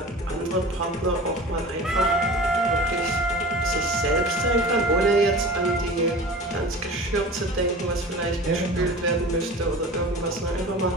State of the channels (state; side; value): normal; both; correlation 0.37